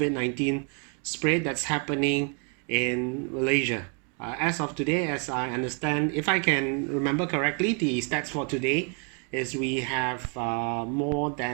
spread that's happening in Malaysia. As of today, as I understand, if I can remember correctly, the stats for today is we have more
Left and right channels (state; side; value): quieter; left; 39.6 dB